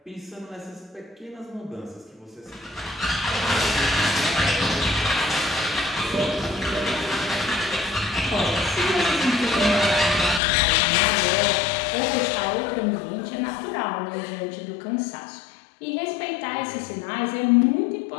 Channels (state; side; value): drops out; right; at 10.4 s